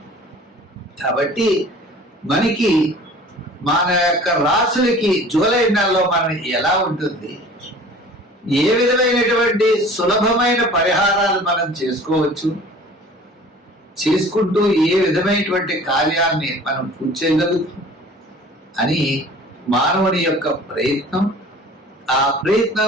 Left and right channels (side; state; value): both; normal; correlation 0.46